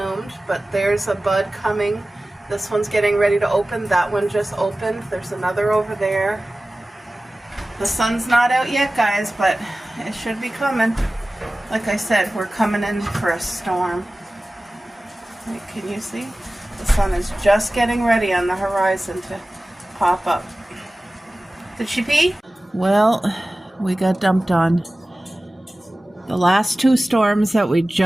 but there's a bud coming. This one's getting ready to open. That one just opened. There's another over there. The sun's not out yet, guys, but it should be coming. Like I said, we're coming in for a storm. Wait, can you see? The sun is just getting ready on the horizon to pop up. Did she pee? Well, we got dumped on. The last two storms that we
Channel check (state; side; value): normal; both; correlation 0.97